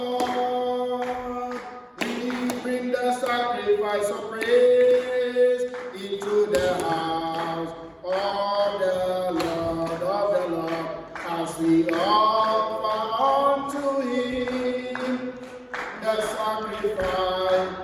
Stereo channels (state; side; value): identical; both; correlation 1.00